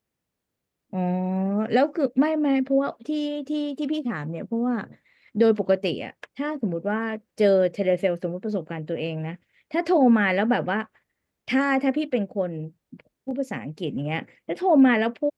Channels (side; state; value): both; identical; correlation 1.00